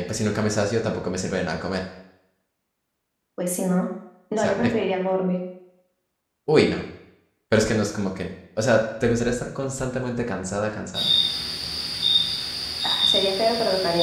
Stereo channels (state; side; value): identical; both; correlation 1.00